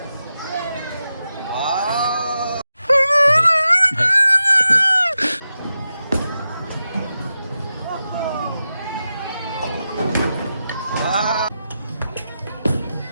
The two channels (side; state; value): both; inverted; correlation -0.90